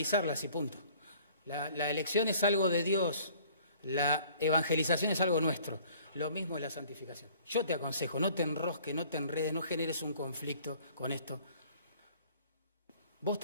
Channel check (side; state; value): both; inverted; correlation -0.53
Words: y punto. La elección es algo de Dios, la evangelización es algo nuestro. Lo mismo es la santificación. Yo te aconsejo, no te enrosques, no te enredes, no generes un conflicto con esto. Vos